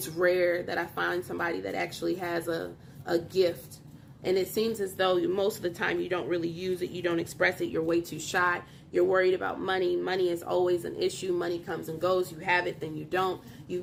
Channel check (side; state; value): both; identical; correlation 1.00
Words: rare that I find somebody that actually has a gift. And it seems as though most of the time you don't really use it. You don't express it. You're way too shy. You're worried about money. Money is always an issue. Money comes and goes. You have it, then you don't. You've